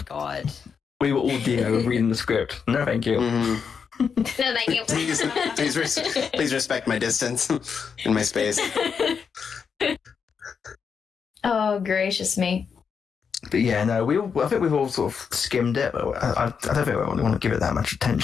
god. We were all reading the script. No, thank you. Mhm. No, thank you. Please respect my distance and my space. Oh, gracious me. But yeah, no, I think we've all sort of skimmed it, but I don't think we want to give it that much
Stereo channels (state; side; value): quieter; right; 6.3 dB